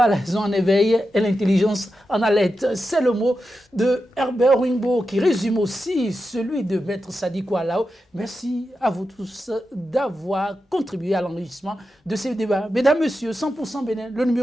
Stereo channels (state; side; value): normal; both; correlation 0.89